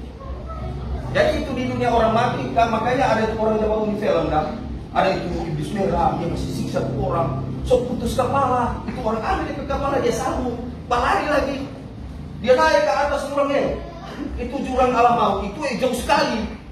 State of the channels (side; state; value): both; identical; correlation 1.00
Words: Jadi itu di dunia orang mati, kan makanya ada orang yang bangun di film kan, ada itu iblis merah, dia masih siksa orang, so putus kepala, itu orang ambil ke kepala dia sambung, lari lagi, dia naik ke atas jurangnya, itu jurang alam maut, itu jauh sekali,